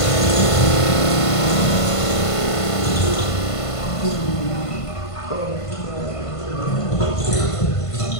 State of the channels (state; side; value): late; right; 1.5 ms